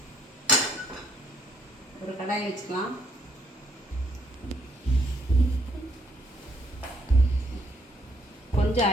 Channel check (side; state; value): both; normal; correlation 0.68